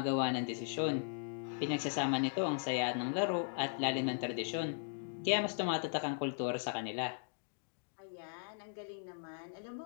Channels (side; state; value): right; silent; digital silence